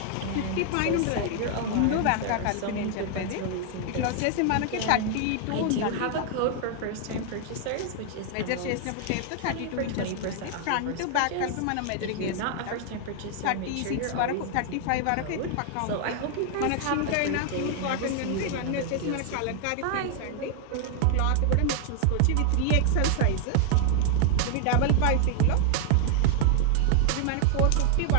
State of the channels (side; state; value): both; different; correlation 0.00